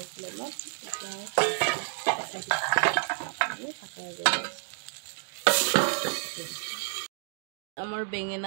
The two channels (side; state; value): left; silent; digital silence